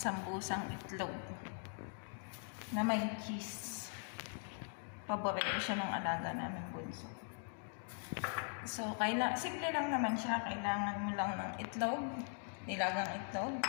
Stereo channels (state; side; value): silent; right; 50 dB below the other